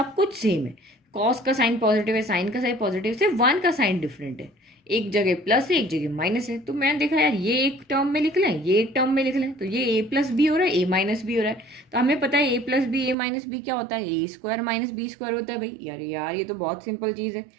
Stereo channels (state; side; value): drops out; left; at 13.2 s